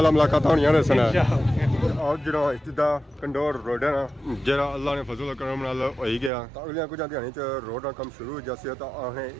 मुलाकात होनी है। और जो इब्तिदा कंडोर रोड है ना, जरा अल्लाह ने फजल करम नाल हो ही गया तो अगलियां कुछ ध्यान रोड का कम शुरू हो जैसे तो असें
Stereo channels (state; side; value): drops out; left; at 6.3 s